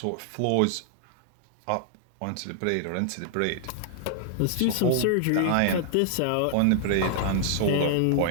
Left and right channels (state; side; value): different; both; correlation -0.01